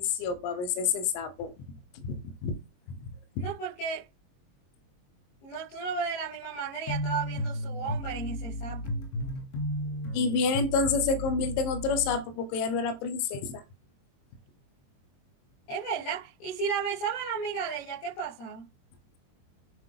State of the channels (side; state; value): right; late; 22 ms